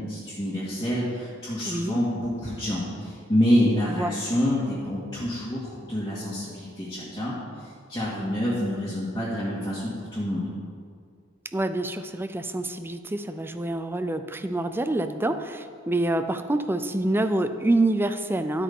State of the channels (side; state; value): both; normal; correlation 0.82